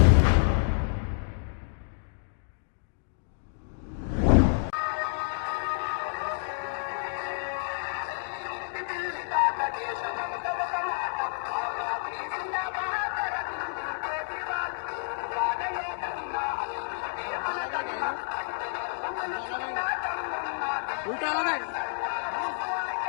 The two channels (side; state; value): right; silent; digital silence